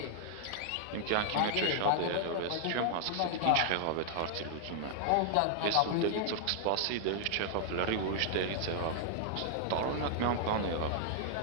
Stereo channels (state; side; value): different; both; correlation -0.01